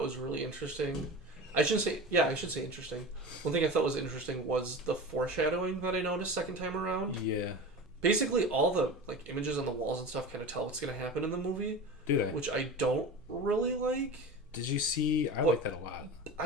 was really interesting. I should say interesting. One thing I thought was interesting was the foreshadowing that I noticed second time around. Yeah. Basically, all the like images on the walls and stuff kind of tell what's going to happen in the movie. Do they? Which I don't really like. Did you see? I like that a lot.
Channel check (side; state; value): both; normal; correlation 0.31